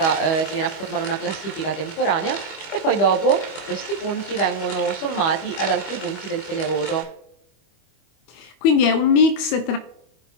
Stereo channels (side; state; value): right; late; 25 ms